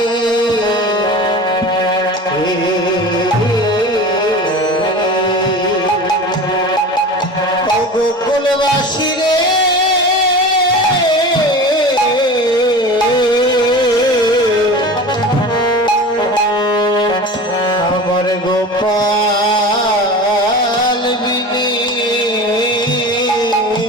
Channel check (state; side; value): normal; both; correlation 0.34